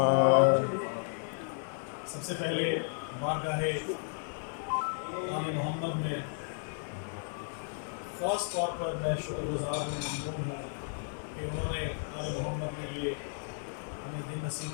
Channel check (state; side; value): silent; right; digital silence